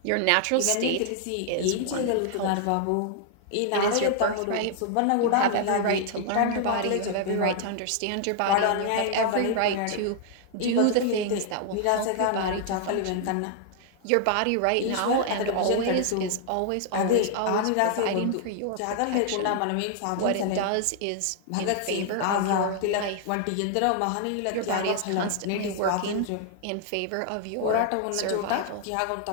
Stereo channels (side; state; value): both; different; correlation 0.00